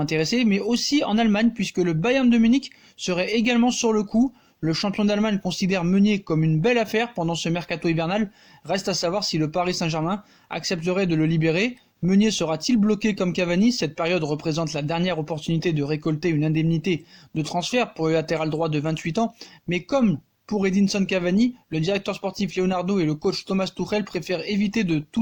mais aussi en Allemagne puisque le Bayern de Munich serait également sur le coup. Le champion d'Allemagne considère Meunier comme une belle affaire pendant ce mercato hivernal. Reste à savoir si le Paris Saint-Germain accepterait de le libérer. Meunier sera-t-il bloqué comme Cavani? Cette période représente la dernière opportunité de récolter une indemnité de transfert pour le latéral droit de 28 ans. Mais comme Pour Edinson Cavani, le directeur sportif Leonardo et le coach Thomas Tuchel préfèrent éviter de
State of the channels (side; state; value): both; identical; correlation 1.00